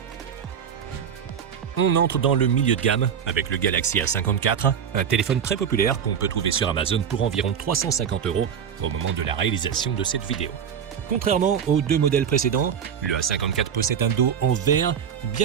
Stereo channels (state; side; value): quieter; left; 7.9 dB